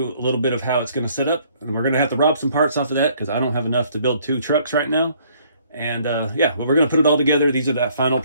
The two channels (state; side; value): inverted; both; correlation -0.62